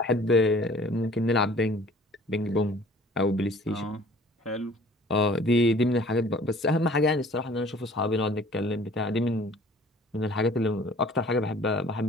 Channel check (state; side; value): normal; both; correlation 0.51